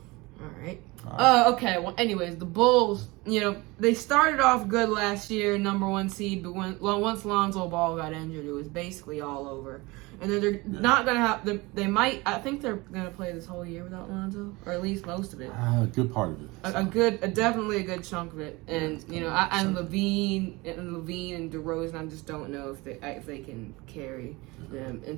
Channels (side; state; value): left; quieter; 23.3 dB